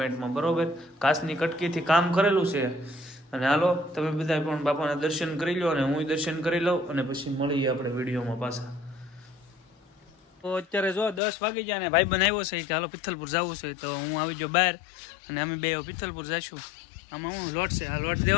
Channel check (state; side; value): drops out; right; at 11.2 s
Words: બરોબર, કાચની કટકીથી કામ કરેલું છે. અને હાલો તમે બધા પણ બાપાના દર્શન કરી લો અને હું દર્શન કરી લઉં અને પછી મળીએ આપણે વિડીયોમાં પાછા. તો અત્યારે જો 10 વાગી ગયા ને ભાઈ બનાવ્યો છે કે હાલો પિથલપુર જવું છે. તો હું આવી ગયો બહાર અને અમે બે પિથલપુર જઈશું. આમાં હું લોટ છે, આ લોટ